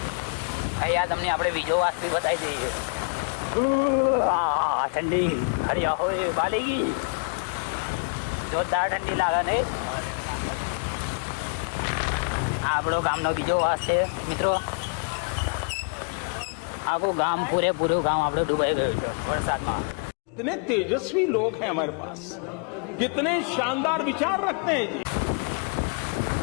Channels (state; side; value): quieter; right; 37.0 dB